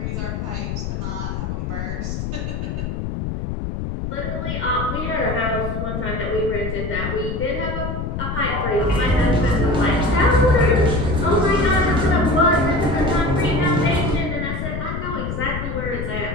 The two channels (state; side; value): noise; left; rumble, 4 dB below the sound